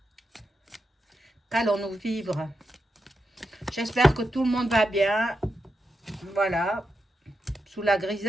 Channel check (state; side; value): normal; both; correlation 0.87